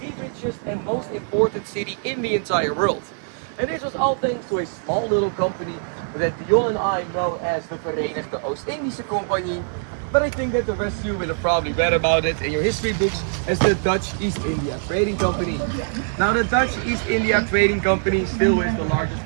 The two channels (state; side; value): silent; left; digital silence